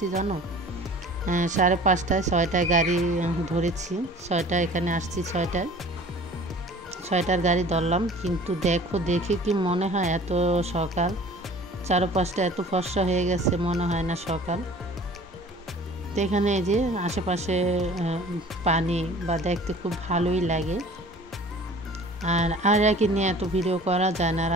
জানো? 5:30, 6টায় গাড়ি ধরেছি। 6টায় এখানে আসছি, 6টার গাড়ি ধরলাম। কিন্তু দেখে কি মনে হয় এত সকাল, চারপাশটা এত ফর্সা হয়ে গেছে, মনে হয় না সকাল। তো এখানে যে আশেপাশে পানি বা দেখতে খুব ভালোই লাগে। আর একে নিয়ে এত ভিডিও করা যায় না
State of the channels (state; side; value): normal; both; correlation 0.46